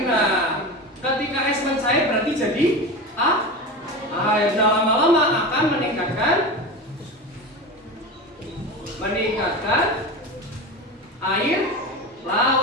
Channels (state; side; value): normal; both; correlation 0.26